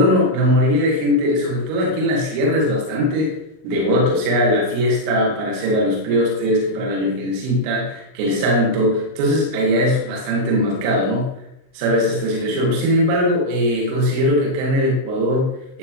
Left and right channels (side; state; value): left; late; 39 ms